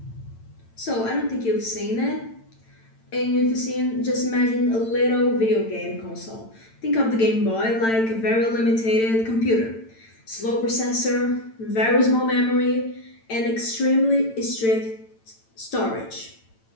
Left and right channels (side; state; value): right; late; 8.9 ms